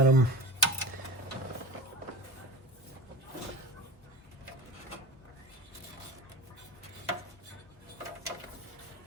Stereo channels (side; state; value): both; normal; correlation 0.31